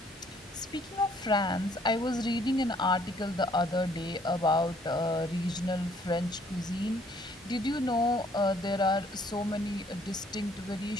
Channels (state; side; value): normal; both; correlation 0.62